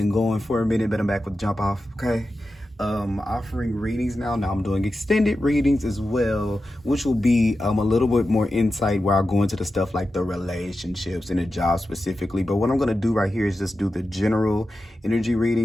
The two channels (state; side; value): normal; both; correlation 0.92